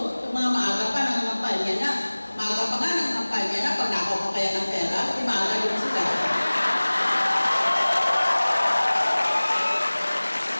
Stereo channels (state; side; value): inverted; both; correlation -1.00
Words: itong mga maaga pa ng kampanya na. Maaga pa nga ng kampanya na, pag nakaw pa kaya ng pera, di maaga din sila.